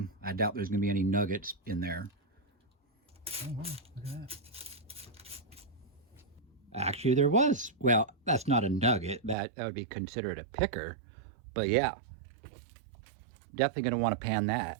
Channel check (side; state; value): left; drops out; at 9.3 s